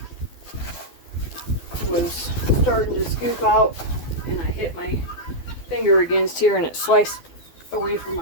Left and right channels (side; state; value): right; late; 12 ms